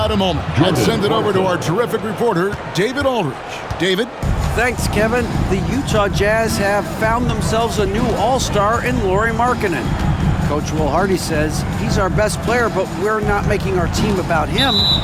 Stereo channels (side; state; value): both; identical; correlation 1.00